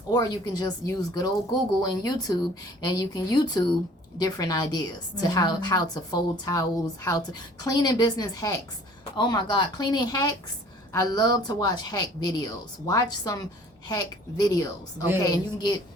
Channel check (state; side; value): normal; both; correlation 0.52